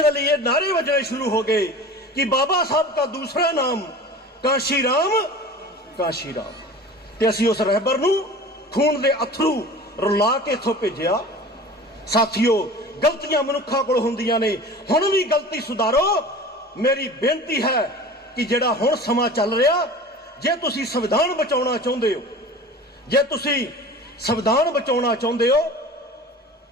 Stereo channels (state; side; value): normal; both; correlation 0.38